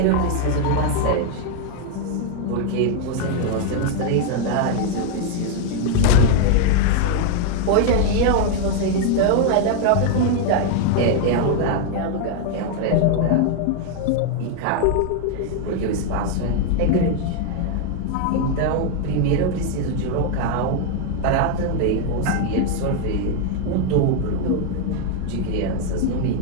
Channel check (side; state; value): both; different; correlation 0.01